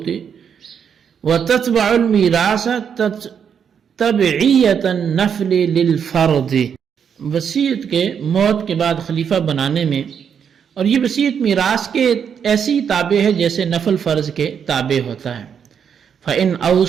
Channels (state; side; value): quieter; left; 7.5 dB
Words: وتتبع المیراث تبعیۃ النفل للفرض، وصیت کے موت کے بعد خلیفہ بنانے میں، اور یہ وصیت میراث کے ایسی تابع ہے جیسے نفل فرض کے تابع ہوتا ہے۔ فَإِنْ